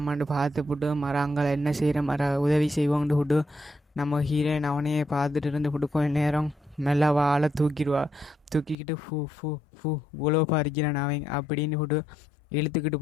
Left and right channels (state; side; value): drops out; right; at 8.8 s